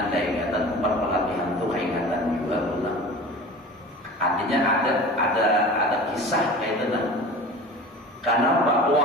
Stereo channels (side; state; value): both; normal; correlation 0.37